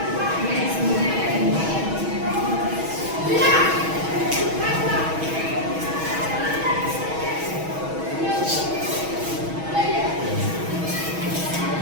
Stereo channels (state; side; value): late; left; 6.2 ms